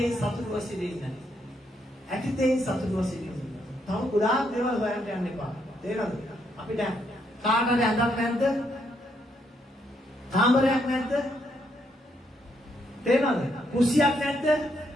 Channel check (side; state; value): both; normal; correlation 0.76